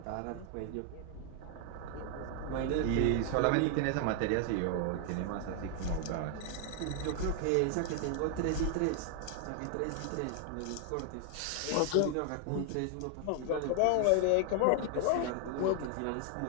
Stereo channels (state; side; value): different; both; correlation 0.00